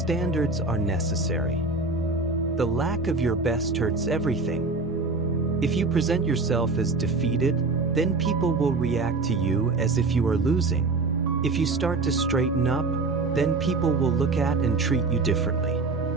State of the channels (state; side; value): quieter; left; 3.7 dB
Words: are necessary. The lack of your best hurts everything. If you present yourself as defeated, then people will react to you as if you are losing. If you start to straighten up, then people will look at and treat you differently.